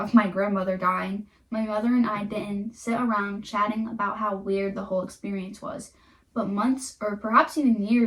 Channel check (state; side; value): identical; both; correlation 1.00